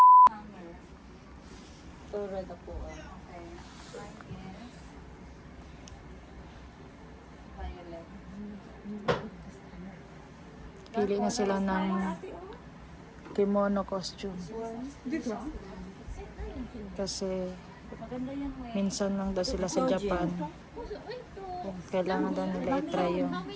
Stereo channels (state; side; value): identical; both; correlation 1.00